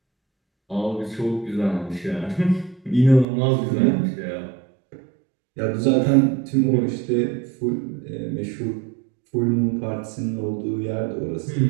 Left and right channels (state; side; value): drops out; left; at 3.2 s